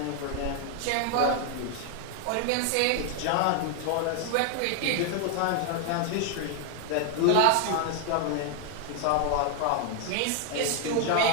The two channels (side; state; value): both; different; correlation 0.00